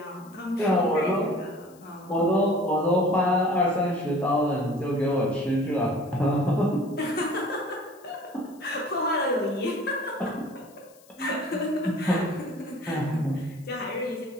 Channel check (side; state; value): left; noise; hiss, 27 dB below the sound